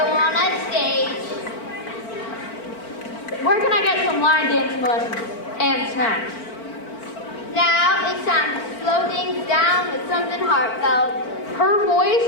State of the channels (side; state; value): right; late; 4.4 ms